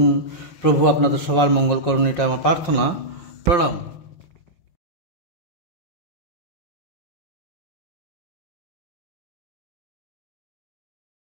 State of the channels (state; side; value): late; right; 5.6 ms